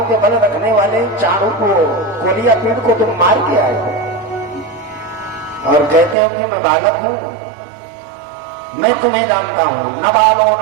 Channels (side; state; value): left; drops out; at 6.2 s